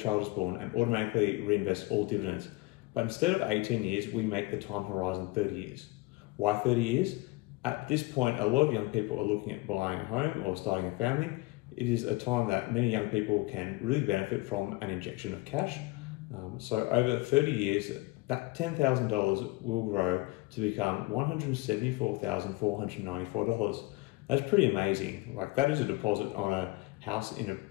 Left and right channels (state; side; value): quieter; right; 21.7 dB